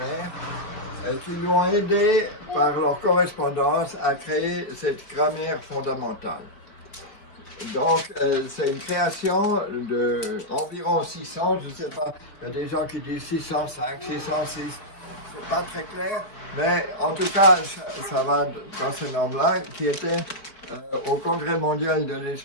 et qui lui ont aidé par leur correspondance à créer cette grammaire fondamentale. Donc, c'est une création d'environ 600, je ne sais pas, il y a des gens qui disent 605, 606, c'est pas très clair, mais en tout cas, ça va dans ce nombre-là, qui était au Congrès mondial de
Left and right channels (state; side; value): late; right; 4.5 ms